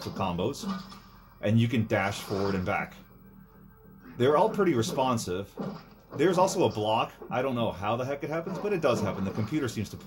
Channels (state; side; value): identical; both; correlation 1.00